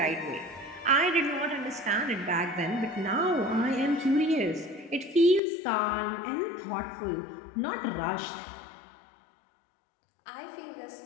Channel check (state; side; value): drops out; right; at 5.4 s